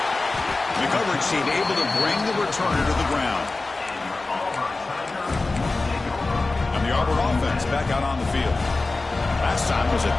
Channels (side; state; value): right; quieter; 3.4 dB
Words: The coverage team able to bring the returner to the ground. And the Auburn offense back out on the field. Last time was a